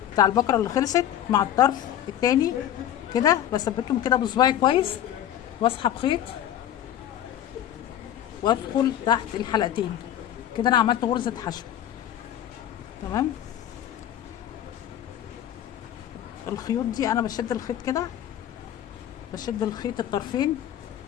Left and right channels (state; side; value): quieter; right; 11.1 dB